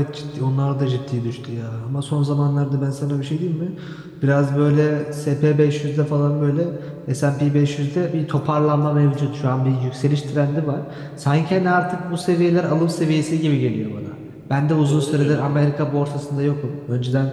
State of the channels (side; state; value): both; identical; correlation 1.00